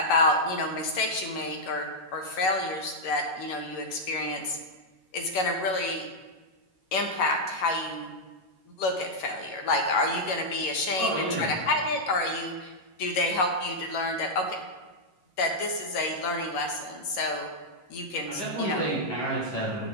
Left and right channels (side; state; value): right; late; 11 ms